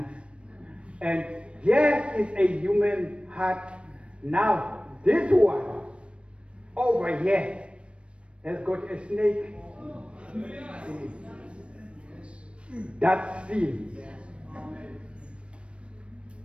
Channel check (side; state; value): left; late; 0.059 ms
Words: here is a human heart. Now, this one over here has got a snake. That's sin.